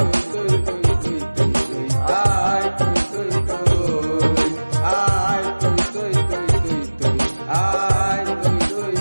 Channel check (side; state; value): both; inverted; correlation -1.00